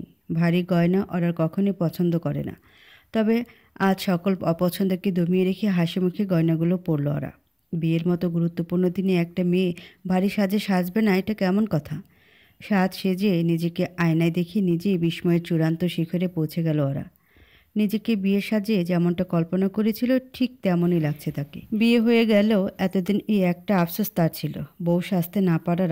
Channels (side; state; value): both; identical; correlation 1.00